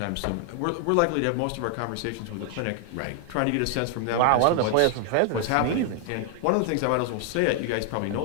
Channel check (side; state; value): both; different; correlation 0.00